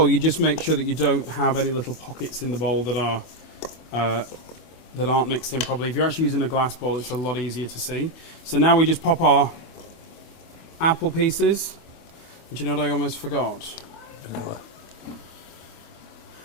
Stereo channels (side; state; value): right; late; 25 ms